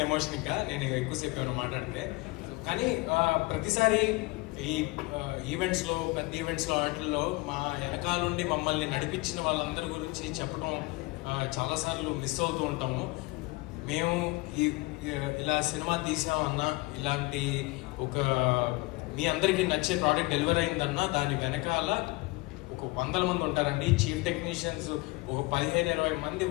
ఎమోషన్. ఇంకా నేను ఎక్కువసేపు ఏమైనా మాట్లాడితే. కానీ ప్రతిసారి ఈ ఈవెంట్స్లో, పెద్ద ఈవెంట్స్లో, వాటిల్లో మా వెనకాలండి మమ్మల్ని నడిపించిన వాళ్ళందరి గురించి చెప్పడం చాలాసార్లు మిస్ అవుతూ ఉంటాము. మేము ఇలా సినిమా తీసామన్నా, ఇలాంటి ఒక మీ అందరికీ నచ్చే ప్రోడక్ట్ డెలివర్ అయిందన్నా దాని వెనకాల ఒక 100 మంది ఉంటారండి. చీఫ్ టెక్నీషియన్స్ ఒక 15-20 మంది.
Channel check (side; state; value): right; quieter; 23.6 dB